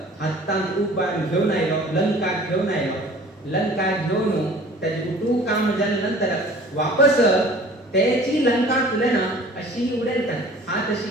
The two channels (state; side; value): normal; both; correlation 0.47